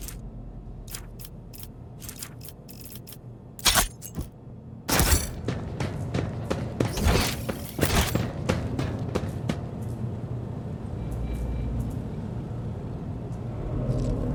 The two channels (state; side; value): identical; both; correlation 1.00